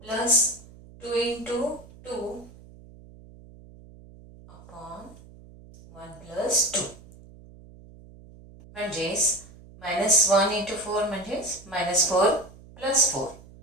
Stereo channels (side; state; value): right; noise; hum, 21 dB below the sound